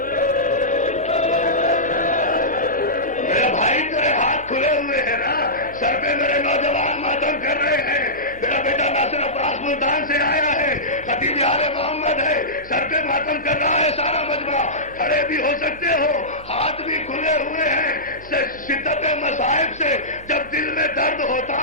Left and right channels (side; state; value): right; noise; hum, 21 dB below the sound